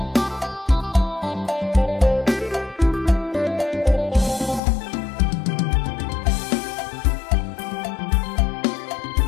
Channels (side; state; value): right; drops out; at 4.6 s